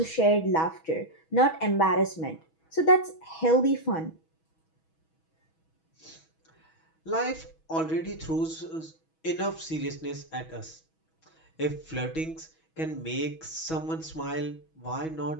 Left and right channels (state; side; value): late; right; 6.2 ms